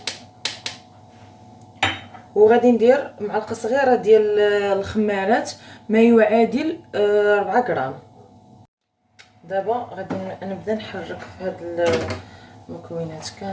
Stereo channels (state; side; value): identical; both; correlation 1.00